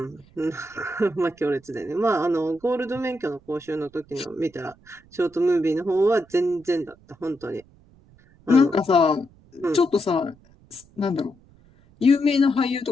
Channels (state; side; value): noise; right; rumble, 28 dB below the sound